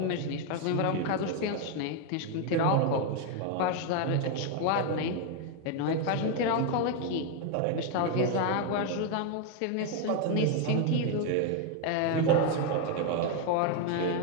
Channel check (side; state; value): both; different; correlation 0.01